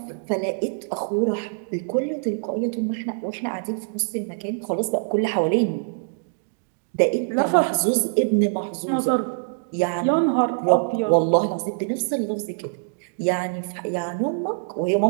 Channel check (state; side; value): silent; left; digital silence